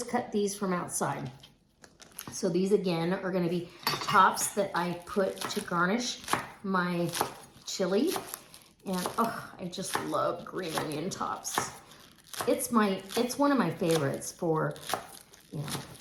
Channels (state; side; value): identical; both; correlation 1.00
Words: cut these from outside. So these again are gonna be tops that I put to garnish my chili. And I just love green onion tops. It's one of my favorites for,